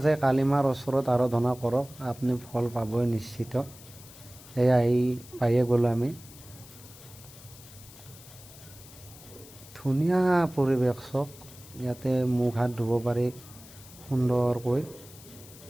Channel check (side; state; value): left; noise; hiss, 19 dB below the sound